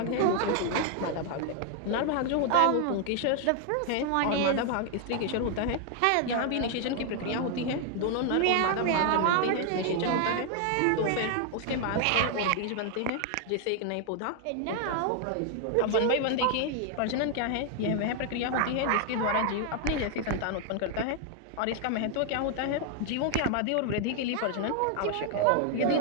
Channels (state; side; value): different; both; correlation 0.00